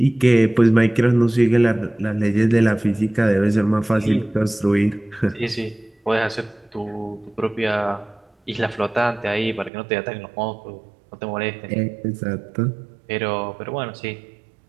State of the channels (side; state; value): left; drops out; at 9.7 s